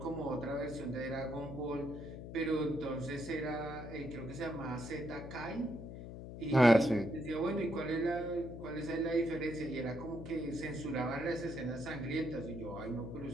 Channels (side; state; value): left; noise; hum, 10 dB below the sound